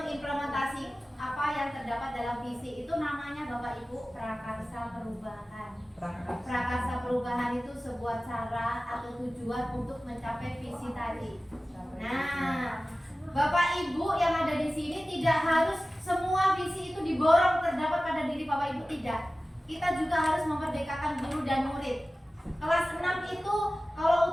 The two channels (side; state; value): both; normal; correlation 0.96